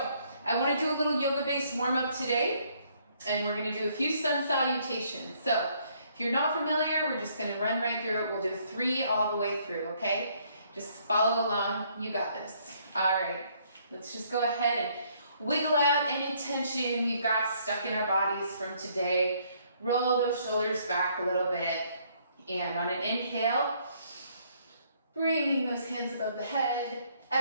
I want to do a little yoga-based warm up today, and we're going to do a few sun salutations. So if you're not familiar, we're just going to run right through it. We'll do 3 all the way through, okay? Just follow along. You got this. All right. Let's just go ahead and wiggle out any tension we've got stuck in our bodies from today. Roll those shoulders back a little bit. And on an inhale, bringing those hands above the head.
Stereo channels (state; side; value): inverted; both; correlation -0.66